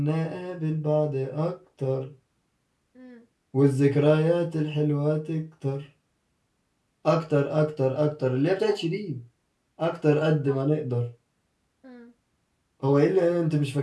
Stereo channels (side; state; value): both; identical; correlation 1.00